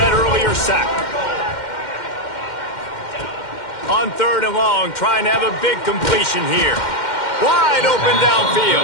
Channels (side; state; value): right; late; 2.1 ms